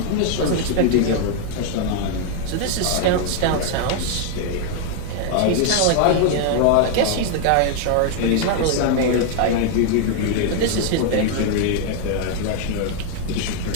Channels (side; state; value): both; different; correlation 0.00